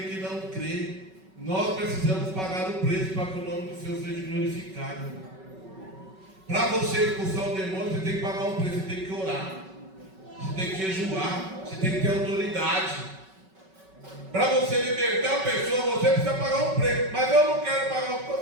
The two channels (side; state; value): left; late; 5.3 ms